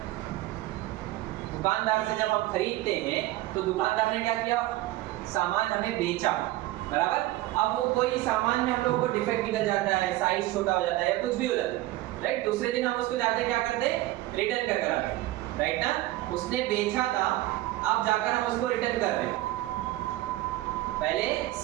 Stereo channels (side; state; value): left; quieter; 16.8 dB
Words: दुकानदार से जब हम खरीदते हैं तो दुकानदार ने क्या किया, सामान हमें बेचा, बराबर। अब वो कोई सामान में हम लोगों को डिफेक्ट निकल जाता है, साइज छोटा हो जाता है या कुछ भी हो जाता है, राइट। दूसरे दिन हम उसको जाते क्या करते हैं, रिटर्न कर आते हैं, राइट ना। उसने बेचा था, अब जाकर हम उसको रिटर्न कर रहे हैं। पहले